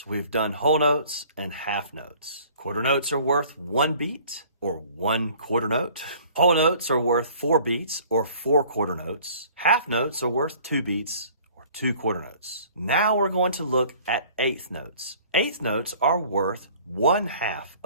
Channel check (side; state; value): both; inverted; correlation -0.51